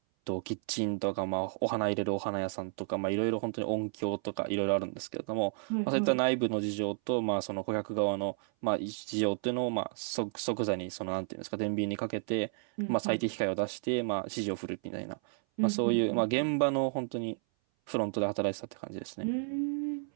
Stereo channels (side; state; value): left; silent; 56 dB below the other